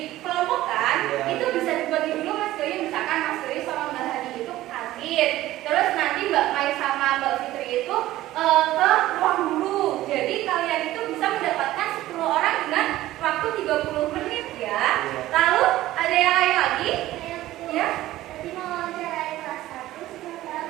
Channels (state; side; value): quieter; left; 15.5 dB